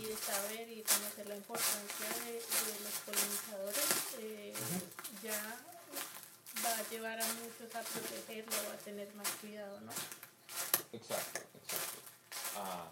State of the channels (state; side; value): identical; both; correlation 1.00